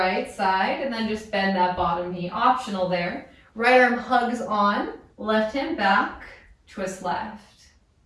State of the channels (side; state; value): both; identical; correlation 1.00